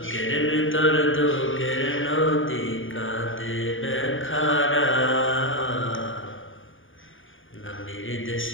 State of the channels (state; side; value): late; right; 0.58 ms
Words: ভেতর দুঃখের নদী কাঁদে বেখারা, নবীর